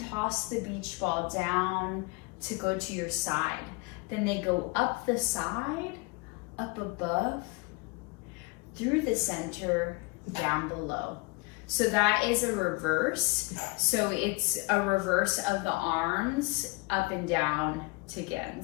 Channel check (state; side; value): quieter; right; 26.5 dB